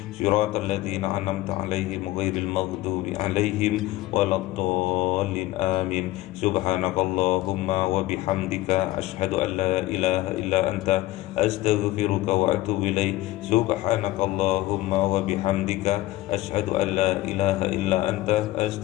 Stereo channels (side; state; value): right; quieter; 17.0 dB